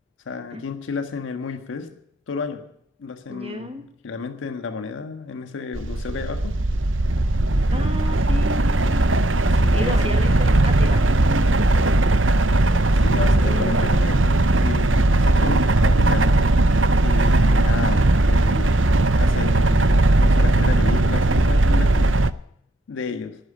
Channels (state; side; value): normal; both; correlation 0.74